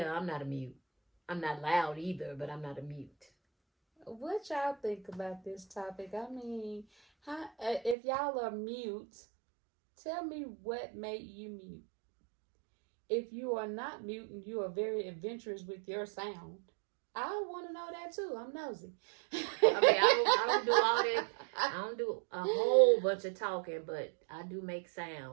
I'm not a mute. I'm not loud either, but I'm not a mute. What y'all think about this topic? I mean, if y'all are mute, tell me what made you mute. If you are not mute and you are very adventurous with your sound, I want to know that too. I'm nosy. I mean, I don't do all that. I don't do a whole bunch of talking, but I do make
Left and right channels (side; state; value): left; drops out; at 8.0 s